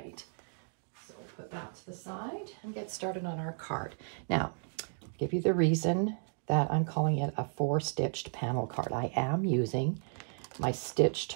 so put that to the side and get started on our card. Now, I'll give you the reason that I'm calling it a 4-stitched panel card. I am using my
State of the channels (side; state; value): left; silent; 55 dB below the other